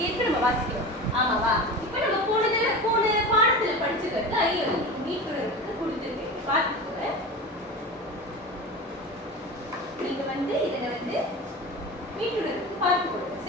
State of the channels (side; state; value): both; normal; correlation 0.30